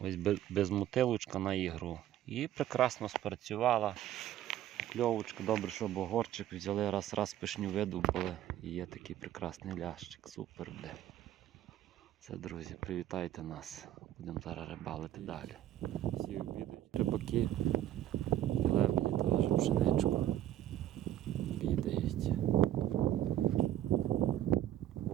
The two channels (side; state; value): left; quieter; 12.4 dB